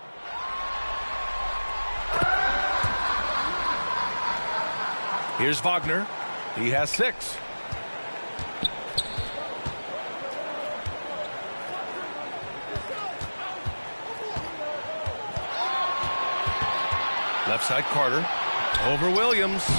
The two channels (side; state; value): both; inverted; correlation -1.00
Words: Here's Wagner. He has 6. Left side, Carter. Over Williams.